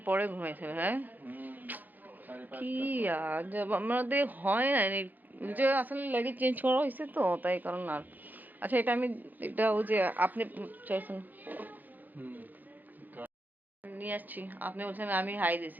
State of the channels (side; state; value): left; late; 0.085 ms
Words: পরে ঘুমাইছিল। হ্যাঁ, কি আজব, আমাদের হয় না যে আসলে লেগে চেঞ্জ করা হয়েছে তো তাই কারণ। আর আচ্ছা, এটা আমি এটা ওই যে আপনি চাইছেন নিয়ে আসছি, আপনি বলছেন আমি হাই